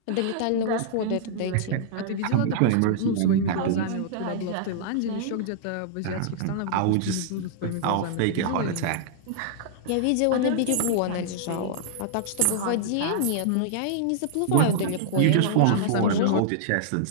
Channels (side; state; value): both; different; correlation -0.02